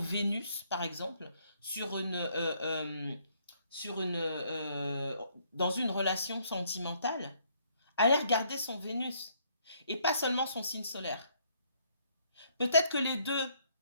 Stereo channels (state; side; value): inverted; both; correlation -0.67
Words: par exemple, dans une relation sentimentale, allez regarder son Vénus et pas seulement son signe solaire. Peut-être que les deux